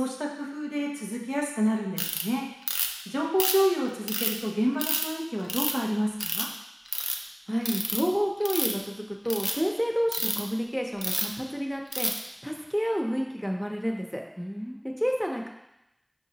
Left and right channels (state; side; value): identical; both; correlation 1.00